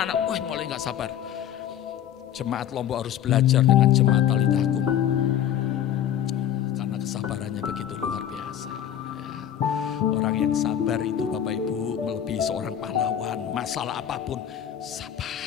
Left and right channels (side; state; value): right; quieter; 10.2 dB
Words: Wah, mulai gak sabar. Jemaat Lombok harus belajar dengan jemaat Talitakum. Karena kesabarannya begitu luar biasa. Ya. Orang yang sabar itu Bapak Ibu melebihi seorang pahlawan. Masalah apapun,